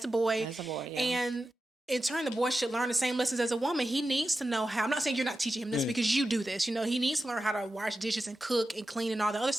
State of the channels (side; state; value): both; normal; correlation 0.92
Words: boy. As a boy, yeah. And in turn, the boy should learn the same lessons as a woman. He needs to know how. I'm not saying you're not teaching him this because you do this. He needs to learn how to wash dishes and cook and clean and all the other